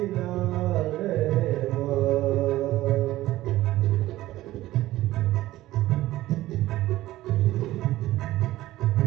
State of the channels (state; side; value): quieter; left; 16.0 dB